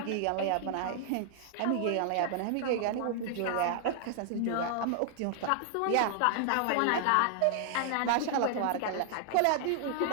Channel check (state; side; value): different; both; correlation 0.00